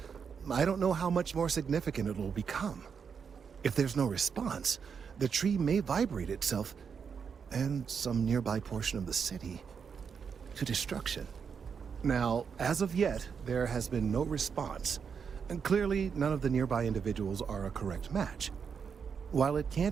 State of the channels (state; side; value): quieter; left; 6.4 dB